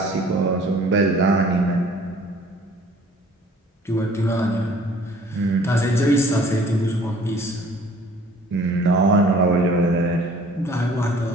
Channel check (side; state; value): both; normal; correlation 0.53